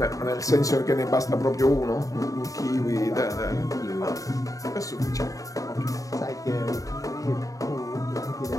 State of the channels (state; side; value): late; right; 0.16 ms